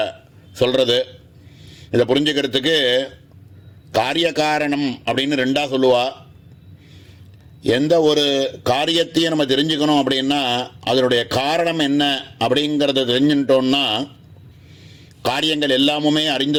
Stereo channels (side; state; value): both; identical; correlation 1.00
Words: சொல்கிறது. இதை புரிஞ்சுக்கிறதுக்கு காரிய காரணம் அப்படின்னு 2ஆக சொல்லுவா. எந்த ஒரு காரியத்தையும் நம்ம தெரிஞ்சுக்கணும் அப்படின்னா அதனுடைய காரணம் என்ன அப்படிங்கிறத தெரிஞ்சுட்டோம்னா காரியங்கள் எல்லாமுமே